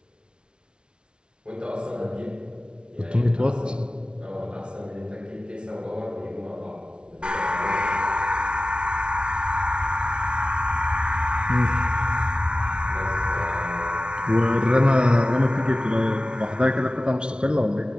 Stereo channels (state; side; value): late; left; 0.056 ms